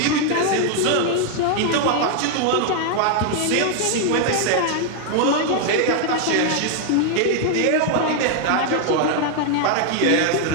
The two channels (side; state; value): both; different; correlation 0.00